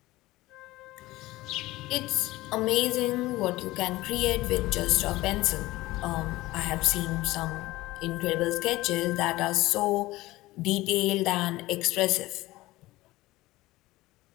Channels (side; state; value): right; quieter; 18.6 dB